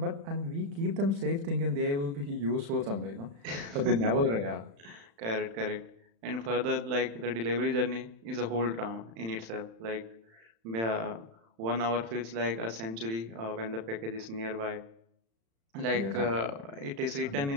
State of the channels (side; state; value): left; late; 35 ms